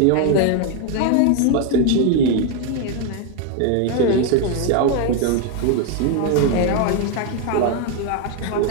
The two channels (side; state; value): both; different; correlation 0.01